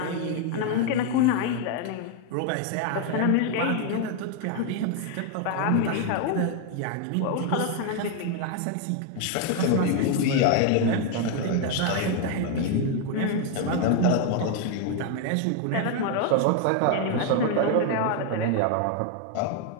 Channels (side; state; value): both; different; correlation 0.01